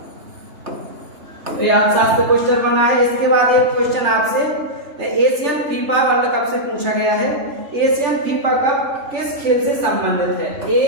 तो ये अर्थशास्त्र क्वेश्चन बना है। इसके बाद एक क्वेश्चन आपसे एशियन फीफा वर्ल्ड कप से पूछा गया है। एशियन फीफा कप किस खेल से संबंधित है?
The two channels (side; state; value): left; late; 3.2 ms